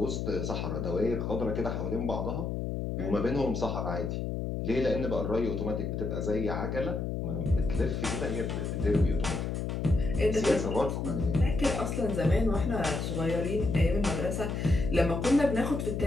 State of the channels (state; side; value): noise; left; hum, 2 dB below the sound